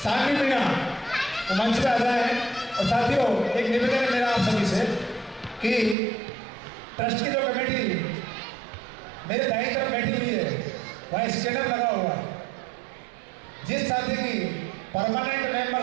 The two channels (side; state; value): left; drops out; at 6.0 s